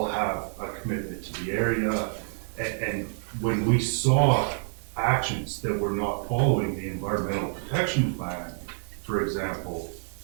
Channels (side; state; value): left; silent; digital silence